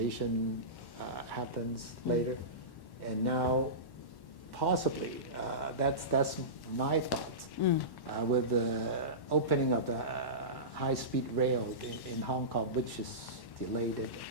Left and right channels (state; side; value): late; right; 1.1 ms